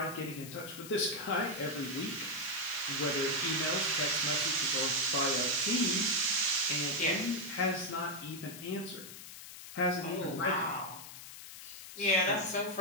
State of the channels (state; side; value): noise; left; hiss, 13 dB below the sound